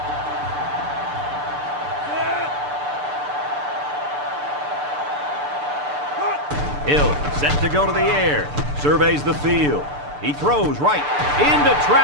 Hill set to go to the air. Surveys the field. He throws right into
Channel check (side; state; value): left; late; 6.8 ms